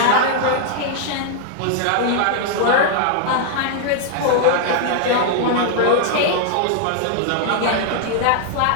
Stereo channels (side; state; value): both; different; correlation -0.01